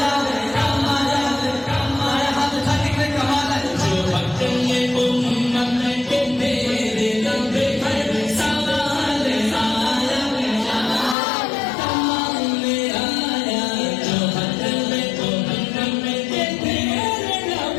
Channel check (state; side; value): drops out; right; at 11.2 s